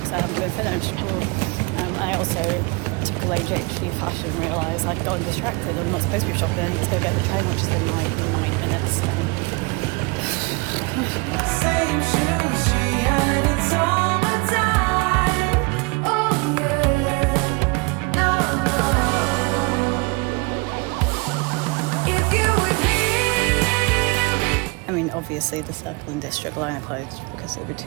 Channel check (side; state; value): left; quieter; 28.3 dB